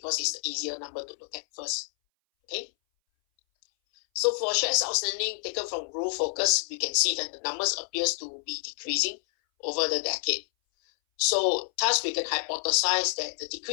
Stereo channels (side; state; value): right; silent; 59 dB below the other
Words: it's the easier number to look at first. Okay. So for shares outstanding taken from Growth Focus, we can see that the numbers appears to be decreasing over the decade. So thus we can hypothesize that the